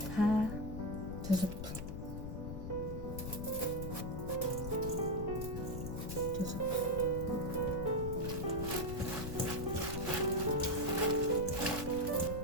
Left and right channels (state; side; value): noise; left; rumble, 6 dB below the sound